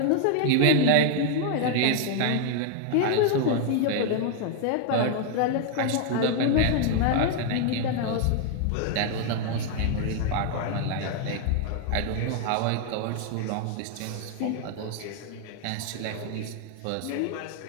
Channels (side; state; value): both; different; correlation 0.00